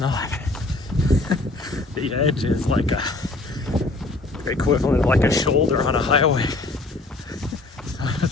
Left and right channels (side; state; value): right; quieter; 3.1 dB